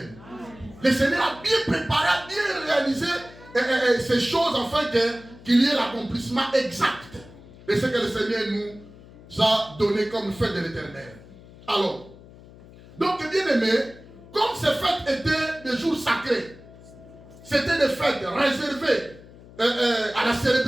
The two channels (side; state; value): left; noise; hum, 21 dB below the sound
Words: Le Seigneur a bien préparé, a bien réalisé ces choses afin qu'il y ait l'accomplissement exact de ce que le Seigneur nous a donné comme fête de l'Éternel. Alors, donc bien aimé, comme ces fêtes étaient des jours sacrés, c'était des fêtes réservées à la